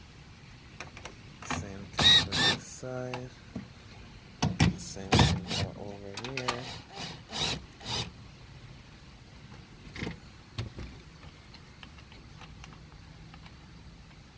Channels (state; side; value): identical; both; correlation 1.00